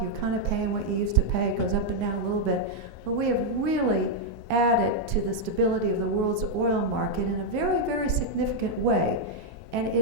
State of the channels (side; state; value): both; normal; correlation -0.01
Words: you're kind of paying what you used to pay. It goes up and down a little bit. But we have really added to the stability of the world's oil market in a very, very significant way. And